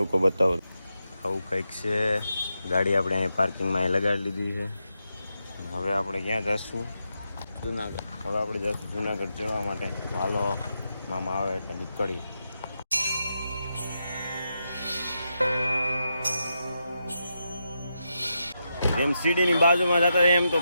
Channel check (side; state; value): both; inverted; correlation -0.85